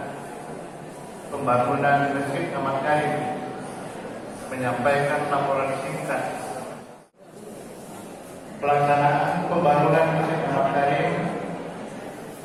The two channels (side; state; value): both; identical; correlation 1.00